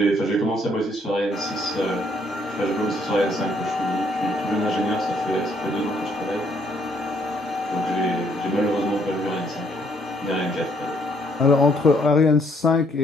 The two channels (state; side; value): normal; both; correlation 0.68